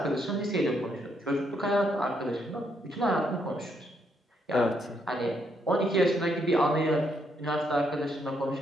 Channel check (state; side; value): normal; both; correlation 0.75